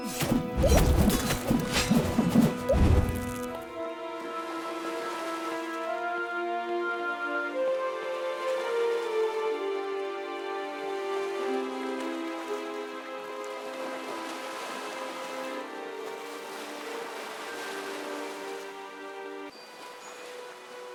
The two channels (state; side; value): identical; both; correlation 1.00